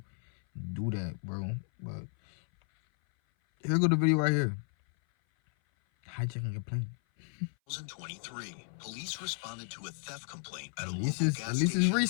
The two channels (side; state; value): right; silent; 56 dB below the other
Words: do that, bro. But here go the video right here. Hijacking a plane. 2023, police responded to a theft complaint at a At local gas least it's station